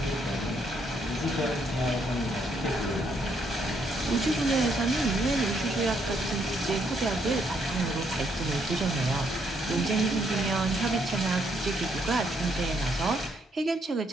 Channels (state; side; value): normal; both; correlation 0.73